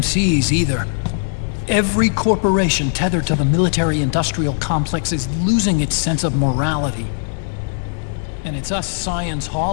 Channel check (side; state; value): right; silent; digital silence